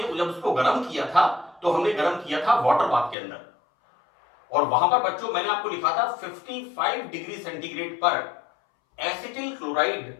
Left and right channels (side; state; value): right; drops out; at 3.2 s